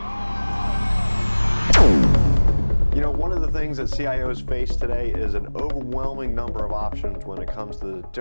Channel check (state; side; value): inverted; both; correlation -1.00